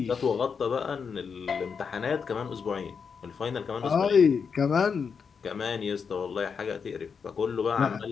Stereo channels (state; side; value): quieter; right; 6.0 dB